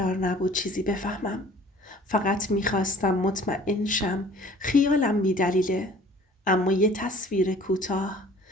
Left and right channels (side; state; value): both; normal; correlation 0.51